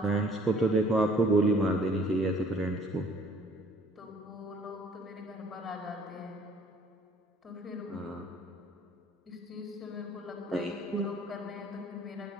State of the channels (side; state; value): both; normal; correlation 0.57